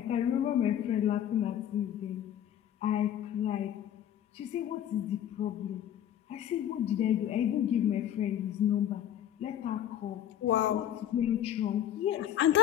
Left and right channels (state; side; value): quieter; right; 10.6 dB